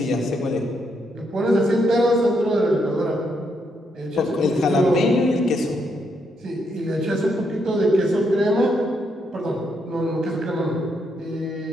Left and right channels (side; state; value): both; normal; correlation 0.77